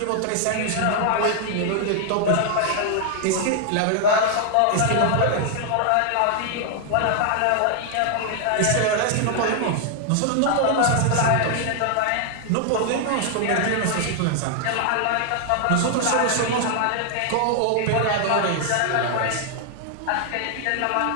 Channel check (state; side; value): different; both; correlation 0.00